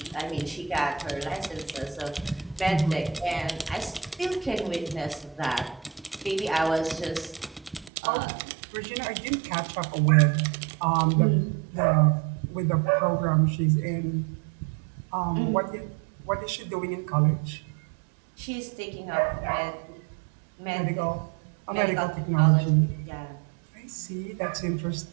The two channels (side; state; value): left; drops out; at 7.9 s